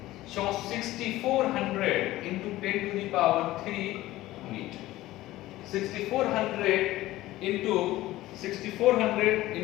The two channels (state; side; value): quieter; right; 16.5 dB